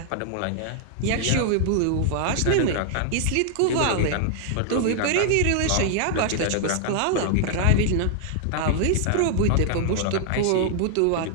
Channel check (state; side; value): different; both; correlation -0.01